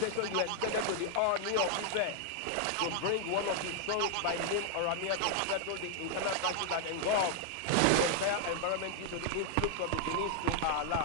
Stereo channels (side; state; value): both; different; correlation 0.00